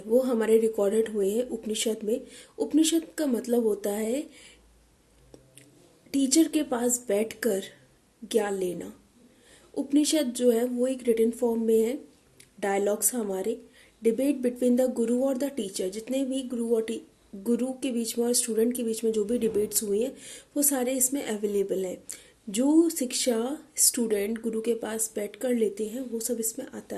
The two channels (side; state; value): both; identical; correlation 1.00